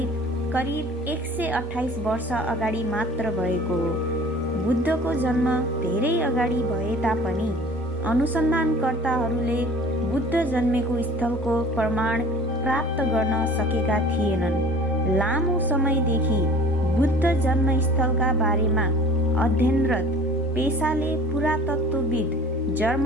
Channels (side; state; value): both; normal; correlation 0.46